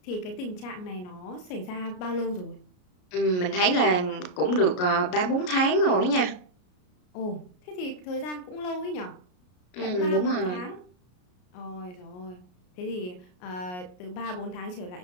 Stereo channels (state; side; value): late; right; 33 ms